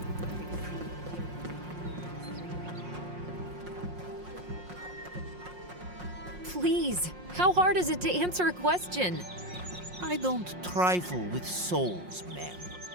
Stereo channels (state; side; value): late; left; 5.6 ms